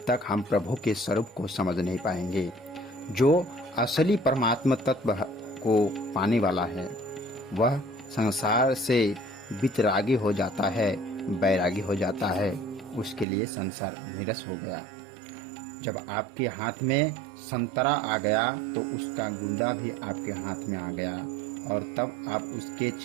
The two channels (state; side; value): drops out; left; at 13.2 s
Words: तक हम प्रभु के स्वरूप को समझ नहीं पाएंगे। जो असली परमात्मा तत्व को पाने वाला है वह संसार से वितरागी हो जाता है, बैरागी हो जाता है। उसके लिए संसार निरस हो गया। जब आपके हाथ में संतरा आ गया तो उसका गूंदा भी आपके हाथ में आ गया और तब आप उसके